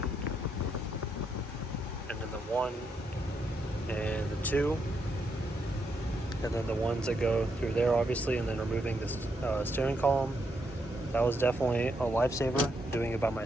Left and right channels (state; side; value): normal; both; correlation 0.79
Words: and then the 1 and the 2, and then the ones that go through there, obviously, and then removing this steering column. That was definitely a lifesaver, doing it by